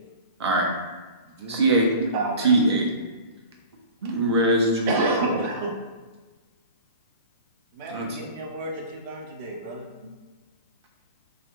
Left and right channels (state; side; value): inverted; both; correlation -0.38